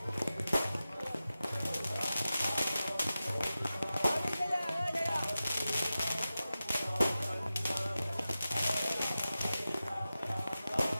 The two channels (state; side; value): inverted; both; correlation -0.94